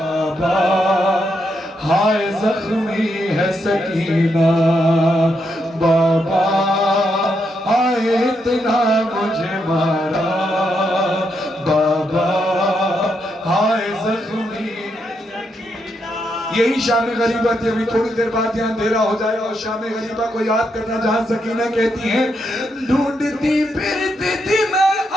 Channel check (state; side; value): normal; both; correlation 0.80